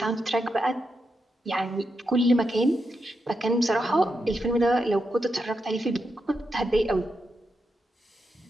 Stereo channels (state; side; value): normal; both; correlation 0.85